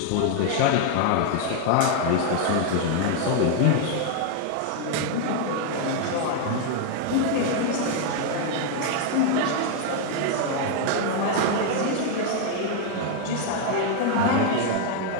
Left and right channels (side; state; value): both; different; correlation 0.00